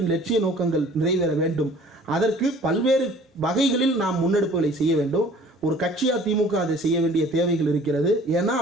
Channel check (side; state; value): both; normal; correlation 0.51